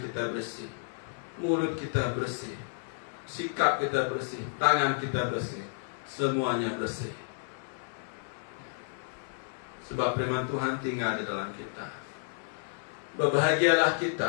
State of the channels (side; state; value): right; silent; 57 dB below the other